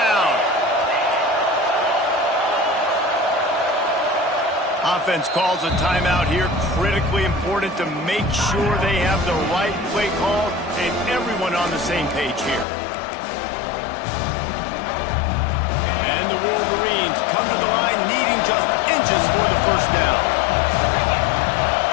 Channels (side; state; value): right; drops out; at 12.7 s